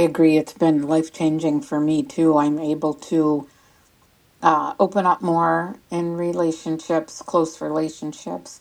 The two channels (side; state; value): both; identical; correlation 1.00